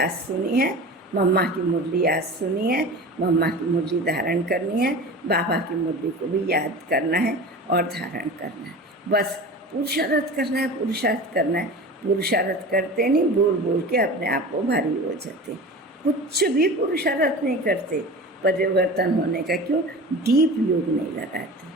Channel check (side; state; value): both; normal; correlation 0.35